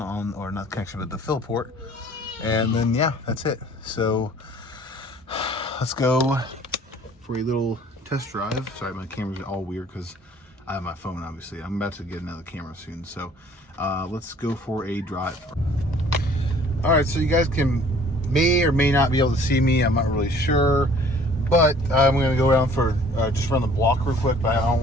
or not connection, but the fill port, and then yeah, that's it. So let's go for a little test drive. Sorry, my camera's all weird because I have my phone, obviously. I'm about to get another camera soon, so let's go for a drive. All right, so you guys may or may not be able to see me. I'm not really sure. But I'm gonna go around for just run the block real quick. But I don't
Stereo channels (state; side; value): normal; both; correlation 0.54